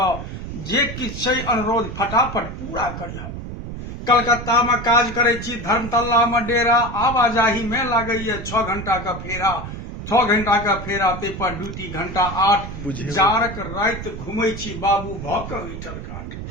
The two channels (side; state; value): right; noise; rumble, 9 dB below the sound